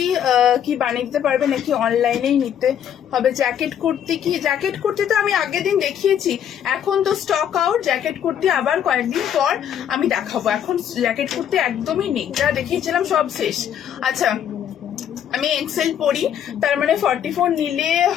কি বানিয়ে দিতে পারবে নাকি অনলাইনেই নিতে হবে? জ্যাকেট কুর্তি কি, জ্যাকেট কুর্তি তো আমি আগের দিন দেখিয়েছি, এখন তো স্টক আউট। জ্যাকেট কুর্তি আবার কয়েকদিন পর আমি দেখাবো, এখন জ্যাকেট কুর্তি একদমই নেই, যা দেখিয়েছিলাম সব শেষ। আচ্ছা আমি এক্সেল পড়ি, তার মানে 44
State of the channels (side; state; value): right; quieter; 9.4 dB